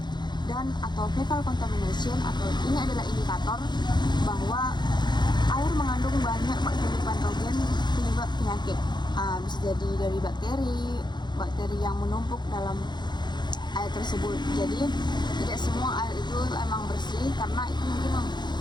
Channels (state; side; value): late; right; 0.21 ms